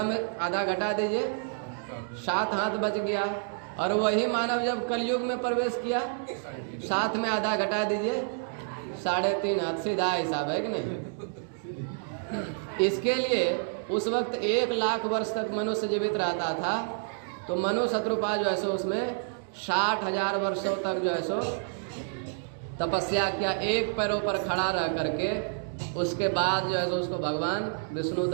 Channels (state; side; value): silent; left; digital silence